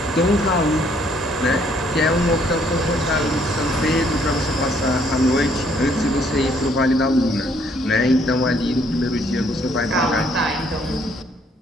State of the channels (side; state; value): both; normal; correlation 0.66